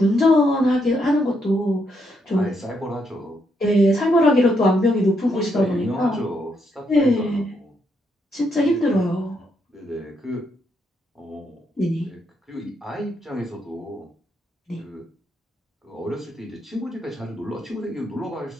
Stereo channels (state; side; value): normal; both; correlation 0.77